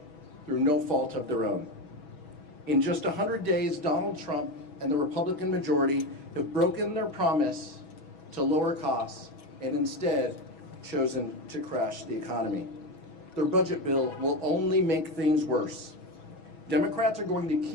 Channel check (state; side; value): late; right; 6.2 ms